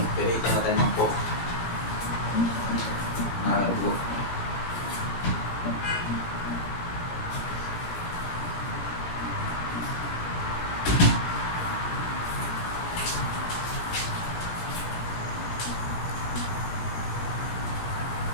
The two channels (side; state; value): right; late; 17 ms